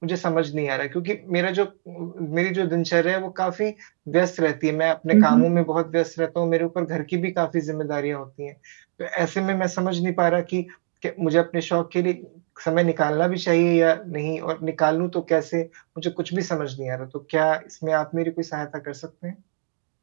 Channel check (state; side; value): silent; left; digital silence